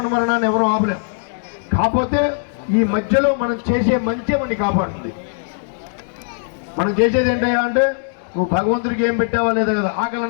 మరణాన్ని ఎవరూ ఆపలేం. కాకపోతే ఈ మధ్యలో మనం చేసే మంచి మనని కాపాడుతుంది. మనం చేసేది ఏంటయ్యా అంటే, నువ్వు భగవంతుడికి ఏం పెట్టావా లేదా కదా, ఆకలి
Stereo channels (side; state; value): right; silent; 66 dB below the other